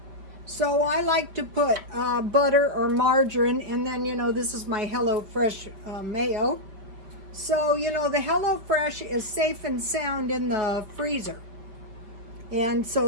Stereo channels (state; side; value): late; left; 5.4 ms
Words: So I like to put butter or margarine, and then, this is my HelloFresh mayo. So, the HelloFresh is safe and sound in the freezer. And